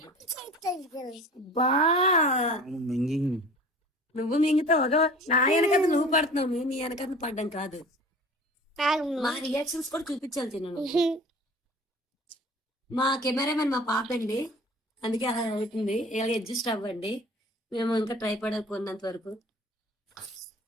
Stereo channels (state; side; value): normal; both; correlation 0.43